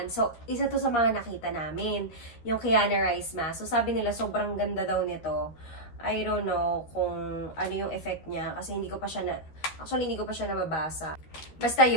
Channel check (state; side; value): late; right; 13 ms